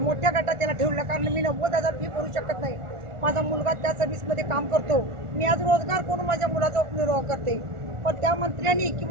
गटात त्याला ठेवलं, कारण मी 90,000 फी भरू शकत नाही. माझा मुलगा त्या सर्व्हिसमध्ये काम करतो. मी आज रोजगार करून माझ्या मुलाचा उपनिर्वाह करते. पण त्या मंत्र्यांनी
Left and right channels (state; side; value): late; left; 1.4 ms